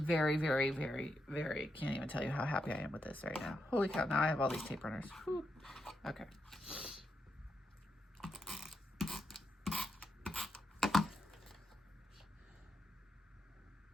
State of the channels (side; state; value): both; normal; correlation 0.83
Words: very, very, very, can't even tell you how happy I am with this right now. Holy cow, now I have all these tape runners. Whew. Okay.